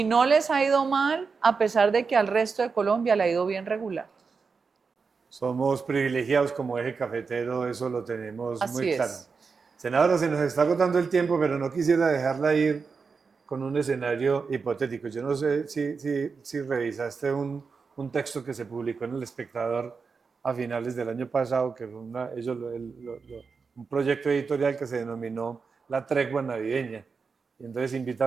no les ha ido mal, a pesar de que al resto de Colombia le ha ido bien regular. Somos privilegiados como eje cafetero, eso lo tenemos muy Así claro. es. Senadora, se nos está agotando el tiempo, pero no quisiera dejarla ir con un escenario hipotético. Yo no sé si revisaste un texto que se publicó en El Espectador a finales del año pasado, que fue un proyecto editorial que se denominó La Tregua Navideña. Y entonces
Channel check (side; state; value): left; quieter; 5.1 dB